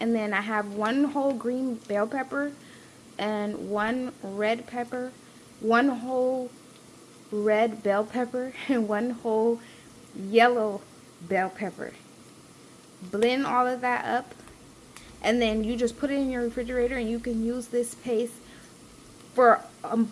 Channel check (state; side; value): identical; both; correlation 1.00